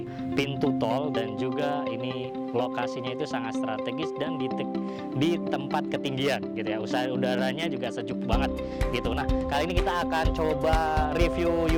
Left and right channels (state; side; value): identical; both; correlation 1.00